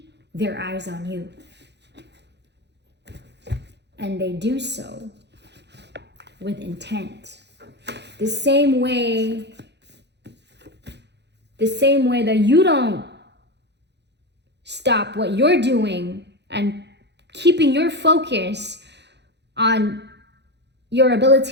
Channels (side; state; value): left; late; 0.50 ms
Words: their eyes on you. And they do so with intent. The same way that you don't stop what you're doing and keeping your focus on your